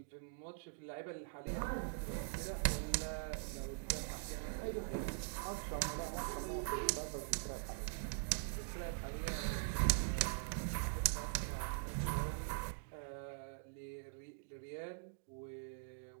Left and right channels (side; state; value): left; silent; digital silence